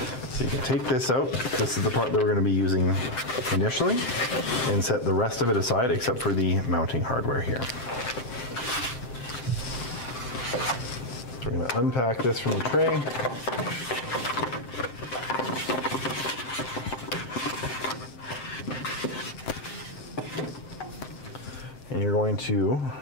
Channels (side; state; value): right; late; 7.7 ms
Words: So you can take this out. This is the part that we're going to be using initially, and set the rest of it aside except for the mounting hardware here. So we're going to unpack this from the tray. And you're going to,